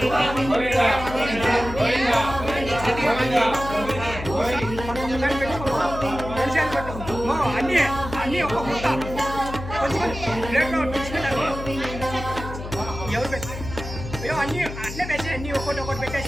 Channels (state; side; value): noise; left; hum, 9 dB below the sound